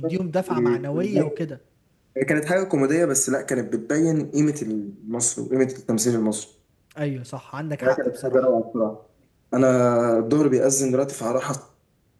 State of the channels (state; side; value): identical; both; correlation 1.00